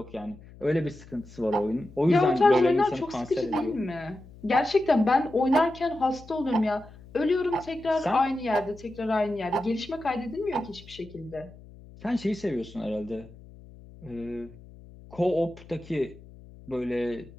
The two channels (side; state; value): left; noise; hum, 20 dB below the sound